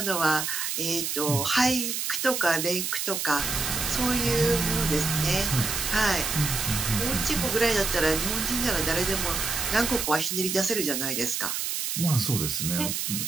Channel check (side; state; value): right; noise; hiss, 2 dB below the sound